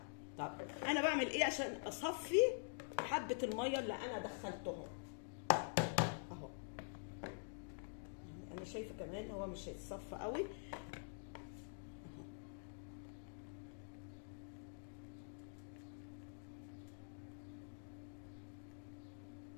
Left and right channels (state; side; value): silent; right; digital silence